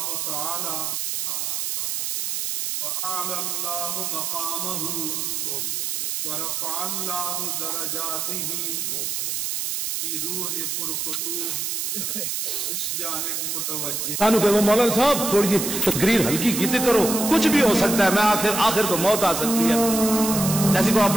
تعالی وَأَعْلَى اللَّهُ مَقَامَهُ وَرَفَعَ اللَّهُ دَرَجَاتِهِ کی روح پرفتوح اس جانب متوجہ۔ کانو کہ وہ مولانا صاحب تھوڑی تقریر ہلکی کیتے کرو، کچھ بھی ہو سکتا ہے، میں آخر تو موت آ سکتی ہے۔ جیسے کو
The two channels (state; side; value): noise; right; hiss, 2 dB below the sound